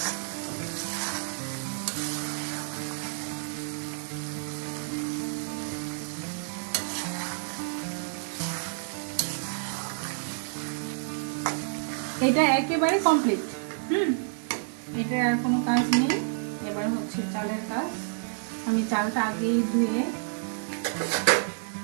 এটা একেবারে কমপ্লিট। এটা আর কোনো কাজ নেই। এবার হচ্ছে চালের কাজ। আমি চালটা আগেই ধুয়ে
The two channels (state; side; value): silent; left; 58 dB below the other